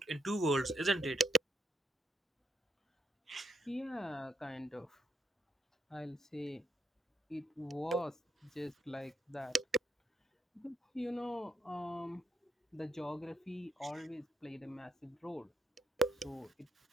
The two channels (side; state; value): both; normal; correlation 0.79